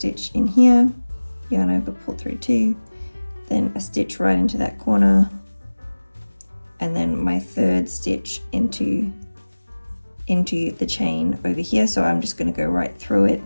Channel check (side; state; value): both; inverted; correlation -1.00